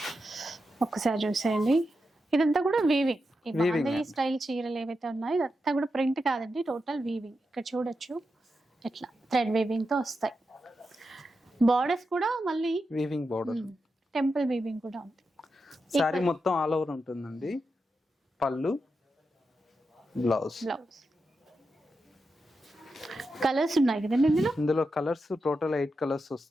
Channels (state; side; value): normal; both; correlation 0.88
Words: ఒక్కసారి చూసేయండి, ఇదంతా కూడా వీవింగ్. ఈ బాందిని స్టైల్ చీరలు ఏవైతే ఉన్నాయో ఇదంతా కూడా ప్రింట్ కాదండి, టోటల్ వీవింగ్. ఇక్కడ చూడొచ్చు ఎట్లా థ్రెడ్ వీవింగ్ తో వస్తాయి. బార్డర్స్ కూడా మళ్ళీ వీవింగ్ బార్డర్, టెంపుల్ వీవింగ్ కూడా ఉంది. సారీ మొత్తం ఆల్ ఓవర్ ఉంటుందండి. పళ్ళు, బ్లౌజ్. కలర్స్ ఉన్నాయి కదండి ఇందులో కలర్స్ టోటల్ 8 కలర్స్